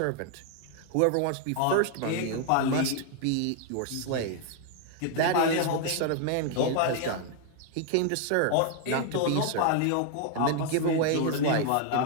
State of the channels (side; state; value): both; different; correlation 0.00